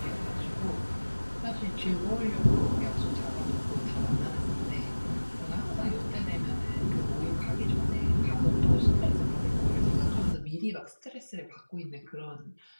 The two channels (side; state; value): both; inverted; correlation -1.00